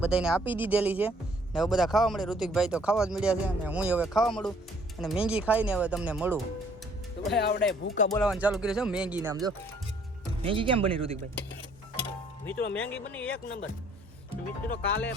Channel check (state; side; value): normal; both; correlation 0.62